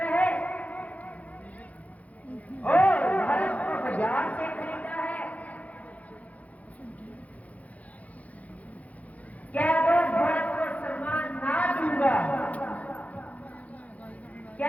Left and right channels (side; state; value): right; late; 0.070 ms